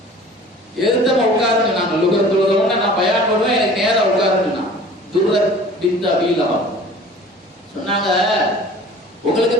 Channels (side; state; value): both; normal; correlation 0.45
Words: எதிர்த்தமா உட்காருன்னு நாங்க லுகர் தொழுதவன நான் பயான் பண்ணுவேன், எனக்கு நேரம் உட்காருன்னு. துர்ரத் பின்த் அபீ லஹப் சொன்னாங்க, உங்களுக்கு